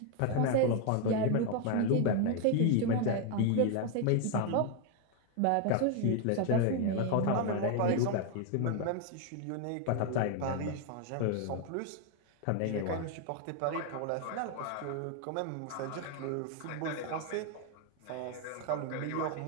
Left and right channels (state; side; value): different; both; correlation 0.01